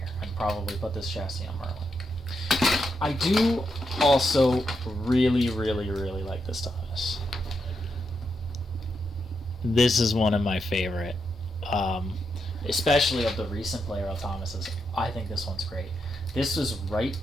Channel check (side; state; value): both; normal; correlation 0.83